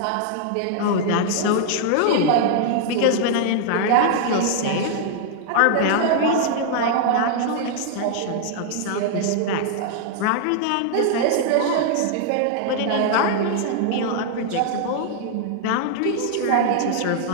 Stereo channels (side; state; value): both; different; correlation 0.00